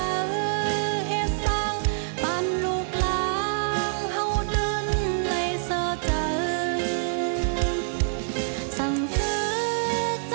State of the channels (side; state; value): left; silent; digital silence